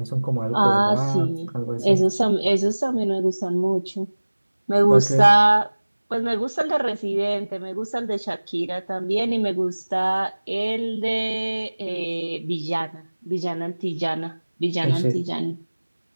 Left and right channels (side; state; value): both; inverted; correlation -1.00